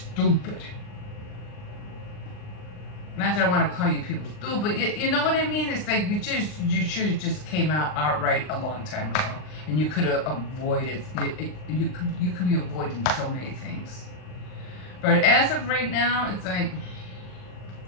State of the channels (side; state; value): right; late; 39 ms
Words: Not that I want to call you people stupid, but you know what I mean? It's like you should have just came out outright a long time ago, and you could have avoided you could be avoiding so many things. But as of right now, it's like